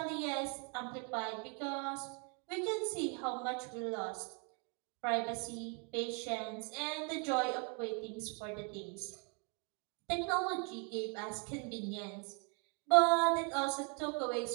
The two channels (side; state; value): left; quieter; 36.9 dB